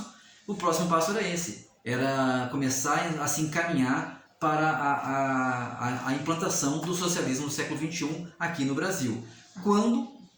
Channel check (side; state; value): both; identical; correlation 1.00